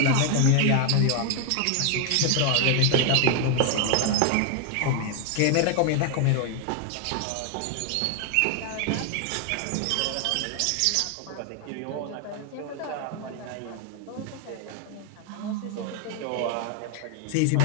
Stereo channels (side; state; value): both; different; correlation 0.00